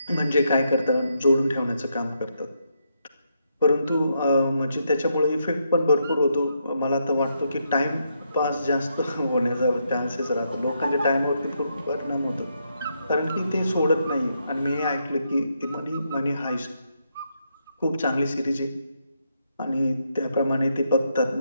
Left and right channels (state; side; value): inverted; both; correlation -0.79